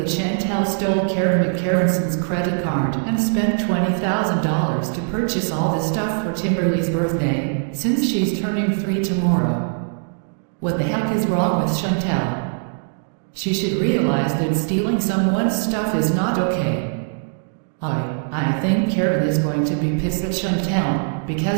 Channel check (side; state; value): left; silent; digital silence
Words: Chantel stole Karen McCarranson's credit card and spent $20,000 to purchase all this stuff for Timberley's birthday, since she's turning 3 tomorrow. What the heck is wrong with Chantel? She should realize that stealing someone's stuff is not okay. I think Karen is going to be pissed at Chantel,